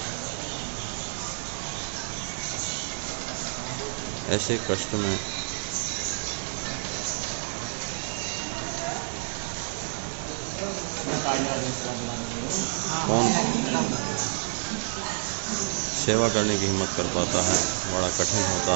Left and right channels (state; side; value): silent; left; digital silence